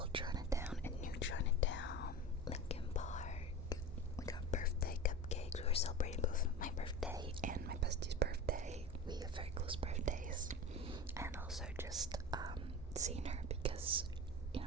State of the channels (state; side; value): normal; both; correlation 0.31